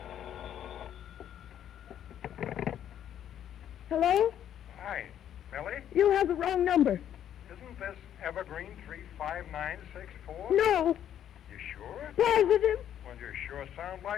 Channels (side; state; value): right; quieter; 10.3 dB